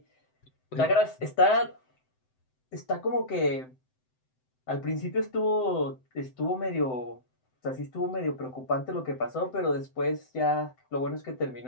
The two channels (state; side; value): late; right; 7.8 ms